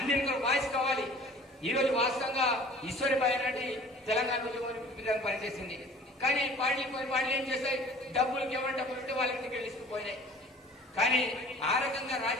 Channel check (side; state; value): both; normal; correlation 0.48